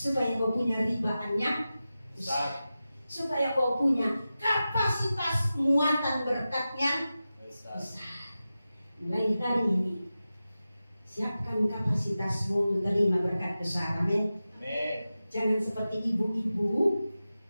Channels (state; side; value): inverted; both; correlation -0.93